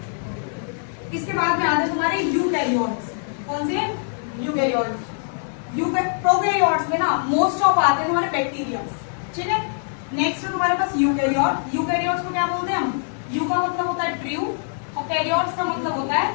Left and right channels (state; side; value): silent; right; digital silence